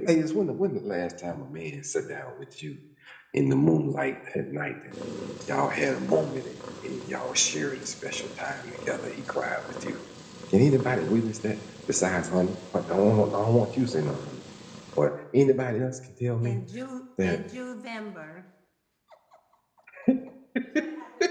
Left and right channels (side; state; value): both; identical; correlation 1.00